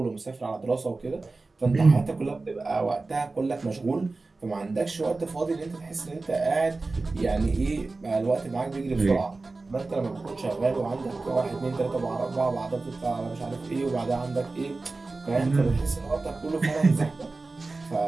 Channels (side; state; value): left; quieter; 3.5 dB